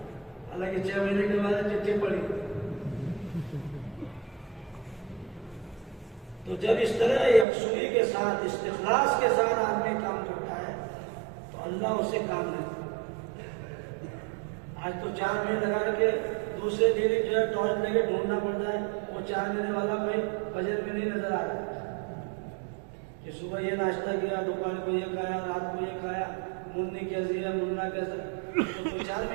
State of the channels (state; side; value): drops out; left; at 7.5 s